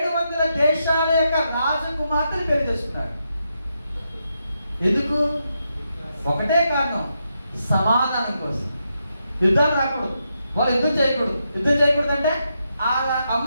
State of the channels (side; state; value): both; inverted; correlation -0.83